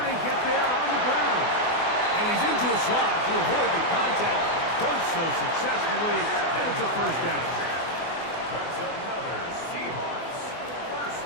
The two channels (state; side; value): late; right; 24 ms